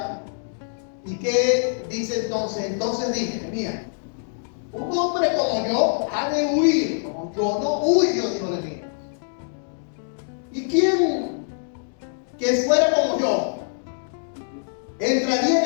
¿Y qué dice entonces? Entonces dije: mira, un hombre como yo ha de huir, como yo no huyo, dijo Nehemías. ¿Y quién que fuera como yo entraría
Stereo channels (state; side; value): silent; right; digital silence